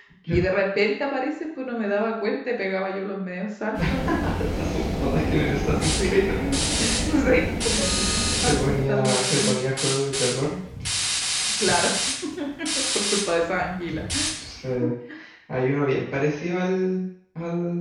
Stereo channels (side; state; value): both; identical; correlation 1.00